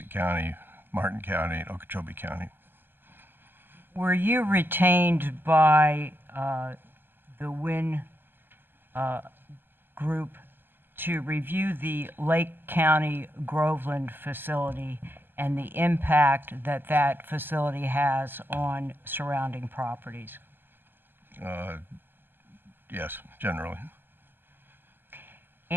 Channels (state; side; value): late; left; 0.095 ms